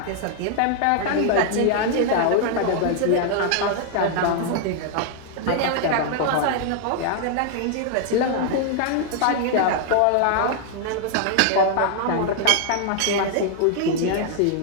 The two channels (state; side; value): different; both; correlation 0.00